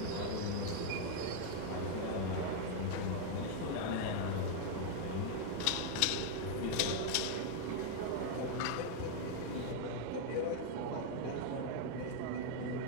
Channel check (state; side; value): different; both; correlation 0.00